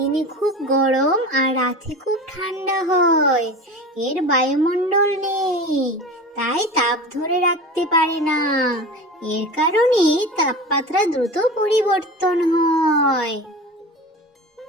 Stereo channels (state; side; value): normal; both; correlation 0.32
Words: খুব গরম আর রাতে খুব ঠান্ডা হয়। এর বায়ুমণ্ডল নেই, তাই তাপ ধরে রাখতে পারে না। এর কারণে তাপমাত্রা দ্রুত পরিবর্তন হয়।